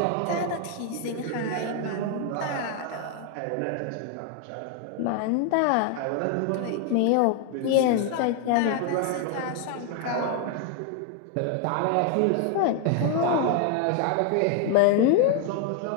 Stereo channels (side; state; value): both; different; correlation 0.00